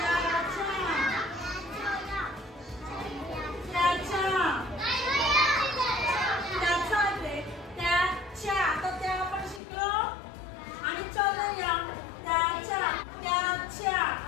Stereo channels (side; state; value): right; drops out; at 9.6 s